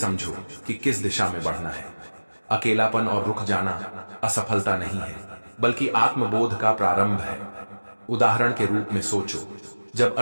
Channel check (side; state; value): both; inverted; correlation -1.00